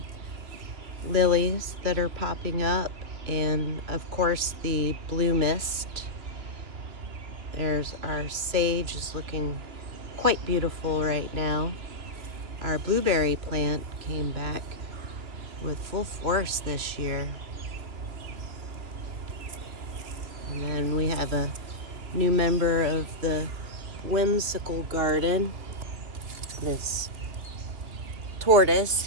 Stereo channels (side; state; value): left; late; 2.8 ms